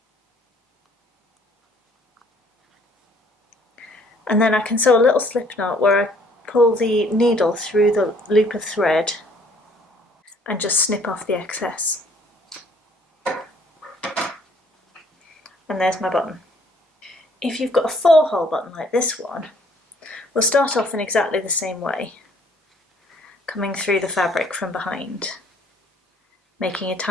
And then I can sew a little slip knot where I pull the needle through the loop of thread and just snip off the excess. And there's my button. If you've got a 4-hole button like this one, we'll start off in exactly the same way, coming through the fabric from behind, making a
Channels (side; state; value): both; normal; correlation 0.61